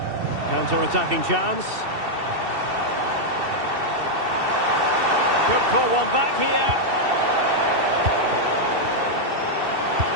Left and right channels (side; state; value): left; late; 2.7 ms